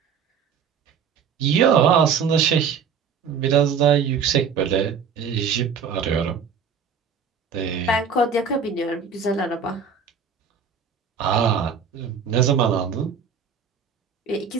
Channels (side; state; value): left; quieter; 6.5 dB